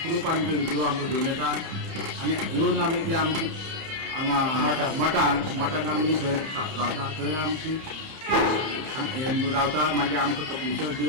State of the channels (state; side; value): late; left; 30 ms